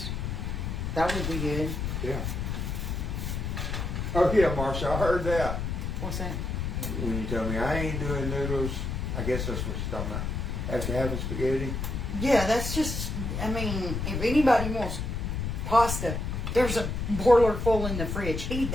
That would be good. Yeah. Oh yeah, Marsha, I heard that. What's that? When you told me I ain't doing noodles, I guess that's what you're talking about. After having spaghetti. Yeah, that's just, I mean, if anybody wants pasta, there's a boiler full in the fridge. Heat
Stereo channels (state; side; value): noise; left; rumble, 2 dB below the sound